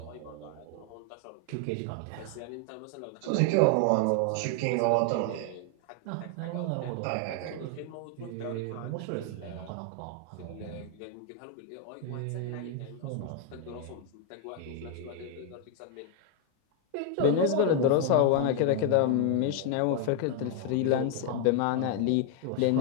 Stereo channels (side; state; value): both; different; correlation 0.00